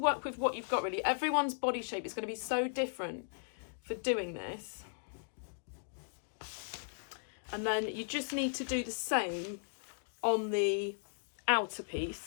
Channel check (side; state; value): right; silent; digital silence